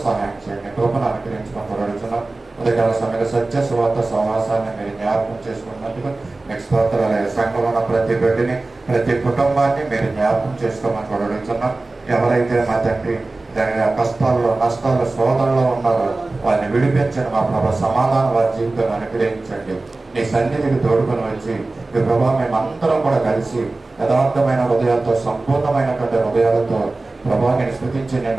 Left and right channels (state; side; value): quieter; left; 3.2 dB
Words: సహాయం చేయండి. కృపను అనుగ్రహించమని కూడా అడుగుతున్నాం. ఉదయకాల సమయంలో సత్య సువార్త సమాసాన్ని మీరు జ్ఞాపకం చేసుకున్నందుకు మీకు స్తోత్రాలు. సంఘంలో ఉన్న ప్రతి బిడ్డని ప్రతి కుటుంబాన్ని మీరు జ్ఞాపకం చేసుకోమని కూడా అడుగుతున్నాం. ఎవరైతే మా తండ్రి దాని కష్టాల్లో, నష్టాల్లో, శోధనలో ఉన్నారో వారిని విడిపించండి. మా ప్రభావ సమాధానం వారి జీవితాన్ని అనుగ్రహించండి. నీ సన్నిధికి తోడుకొని వచ్చి ఈ ప్రభావ మేమందరం కూడా కలిసి యథార్థమైన హృదయాలతో, సంపూర్ణమైనటువంటి హృదయాలతో ప్రభావాన్ని స్థుతించి